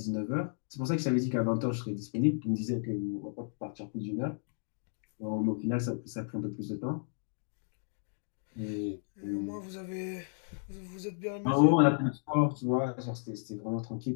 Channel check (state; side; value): silent; right; digital silence